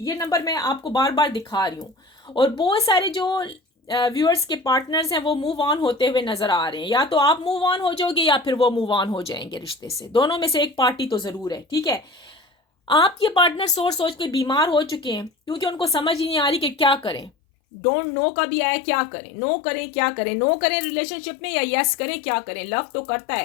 नंबर मैं आपको बार बार दिखा रही हूँ। और बहुत सारे जो व्यूअर्स के पार्टनर्स हैं वो मूव ऑन होते हुए नजर आ रहे हैं। या तो आप मूव ऑन हो जाओगे या फिर वो मूव ऑन हो जाएंगे रिश्ते से, दोनों में से एक पार्टी तो जरूर है, ठीक है। आपके पार्टनर सोच सोच के बीमार हो चुके हैं क्योंकि उनको समझ ही नहीं आ रही कि क्या करें। डोंट नो का भी आया, क्या करें, नो करें क्या करें, नो करें रिलेशनशिप में या यस करें क्या करें। लव तो करता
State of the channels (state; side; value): drops out; right; at 17.3 s